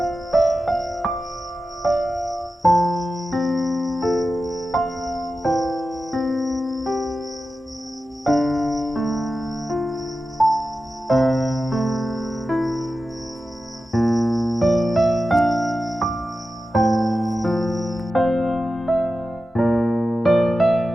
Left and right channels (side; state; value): both; normal; correlation 0.93